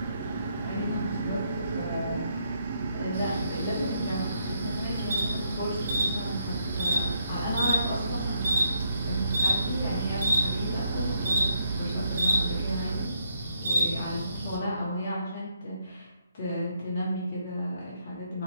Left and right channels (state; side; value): inverted; both; correlation -0.75